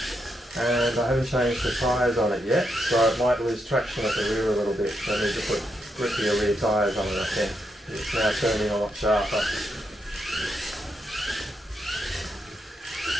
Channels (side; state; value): both; normal; correlation 0.81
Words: and I haven't changed the tyres on it yet, so it might lose traction at the rear a little bit. So I need to put grippier rear tyres on it, I think. It's now turning a lot sharper.